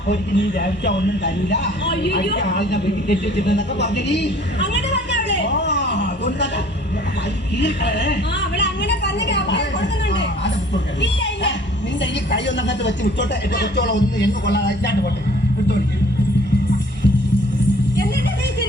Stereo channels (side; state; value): both; normal; correlation 0.53